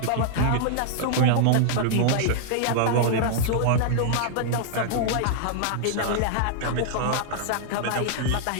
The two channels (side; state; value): both; different; correlation -0.01